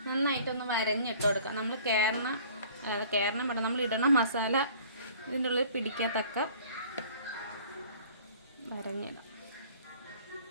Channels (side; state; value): both; inverted; correlation -0.50